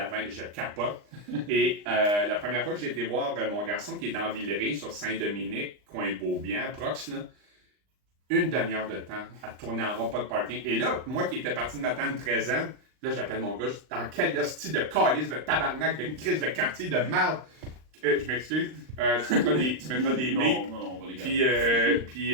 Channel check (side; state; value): left; late; 39 ms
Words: 20, je capote. Et la première fois que j'ai été voir mon garçon qui est dans Villeray, sur Saint-Dominique, coin Beaubien, prox, là, une demi-heure de temps à tourner en rond, pas de parking. Et là, moi qui étais parti de m'attendre 13 ans, là, j'appelle mon gars, dans quel style de calice, de tabarnak, de crise de quartier, de merde. Je m'excuse. Tu mettras des non, on va les garder. Puis,